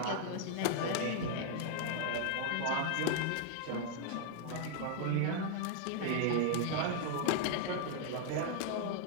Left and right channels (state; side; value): different; both; correlation 0.00